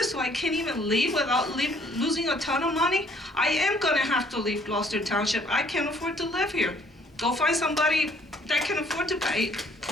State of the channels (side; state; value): both; normal; correlation 0.62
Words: so I can't even leave without losing a ton of money. I am going to have to leave Gloucester Township. I can't afford to live here. Go find somebody that can afford to pay